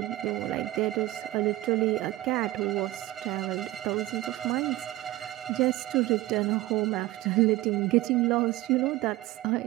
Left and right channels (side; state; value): left; quieter; 17.0 dB